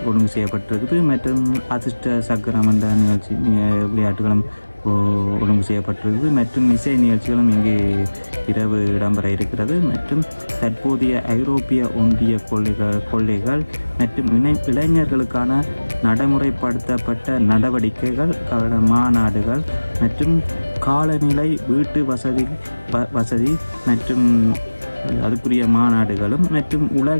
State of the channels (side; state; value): both; inverted; correlation -1.00